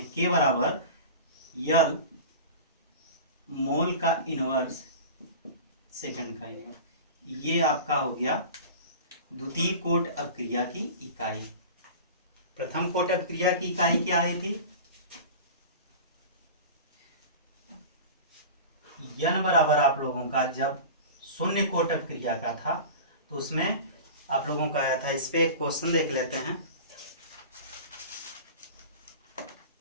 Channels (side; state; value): both; inverted; correlation -0.34